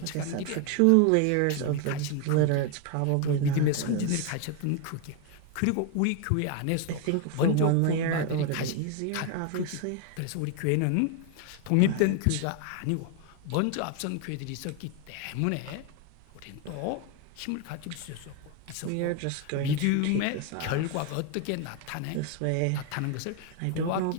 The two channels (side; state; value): both; different; correlation 0.01